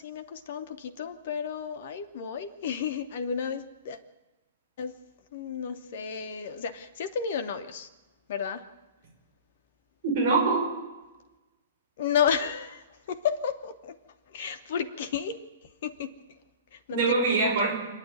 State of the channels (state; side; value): inverted; both; correlation -0.40